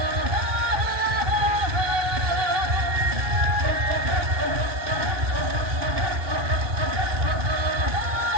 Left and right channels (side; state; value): left; late; 2.7 ms